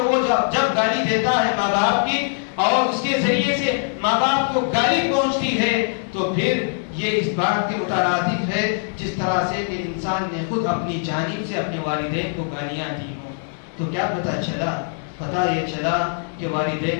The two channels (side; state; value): right; silent; 64 dB below the other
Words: وہ جب گالی دیتا ہے ماں باپ کی اور اس کے ذریعے سے ماں باپ کو گالی پہنچتی ہے، تو پھر یہ اس بات کے مترادف ہے جس طرح سے کہ انسان نے خود اپنی جانب سے اپنے والدین کو گالیاں دی ہوں۔ تو کیا پتہ چلا؟ پتہ یہ چلا کہ